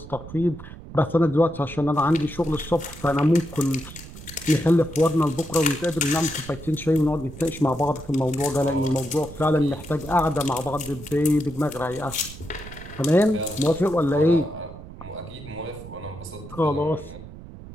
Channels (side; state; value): right; noise; rumble, 15 dB below the sound